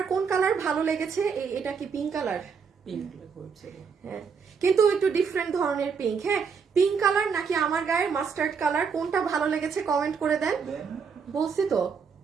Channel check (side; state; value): left; quieter; 6.0 dB